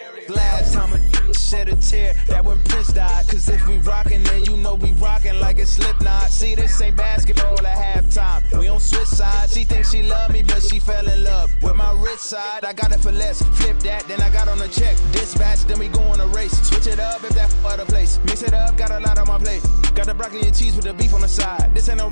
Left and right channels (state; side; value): inverted; both; correlation -1.00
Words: Last time a shed a tear, that when Prince died. Cause if we rockin', then you know we rockin' like a Slipknot. See, this ain't basketball at halftime. We on switch sides. She thinks she love me, but she fell in love with my rich side. I got it for less. Flip that, then I got on a check. Dispatch, then we go on a race. Switch it up if that other place. Mix it up, got a lot on my plate. Got the broccoli and cheese with the beef on the side. This ain't no